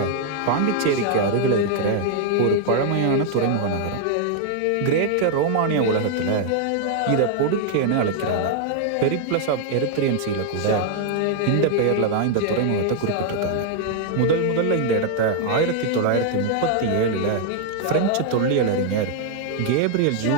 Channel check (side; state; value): both; different; correlation 0.00